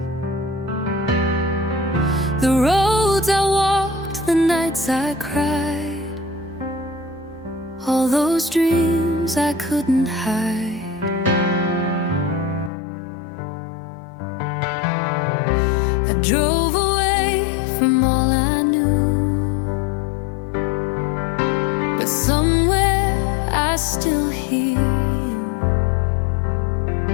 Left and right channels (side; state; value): right; drops out; at 12.7 s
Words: The roads I walked, the nights I cried, all those dreams I couldn't hide. I drove away from all I knew, but somewhere I still hear you